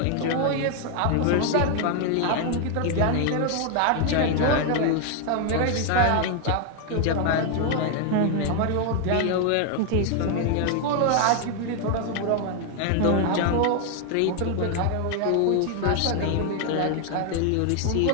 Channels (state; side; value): different; both; correlation 0.01